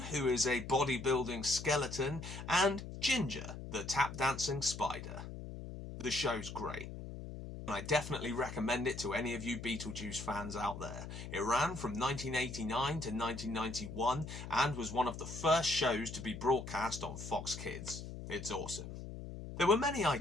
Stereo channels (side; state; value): left; noise; hum, 9 dB below the sound